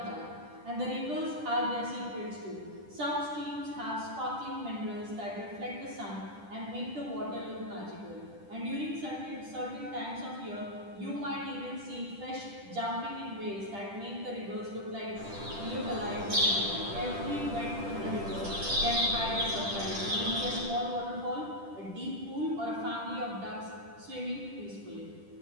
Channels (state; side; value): late; left; 10 ms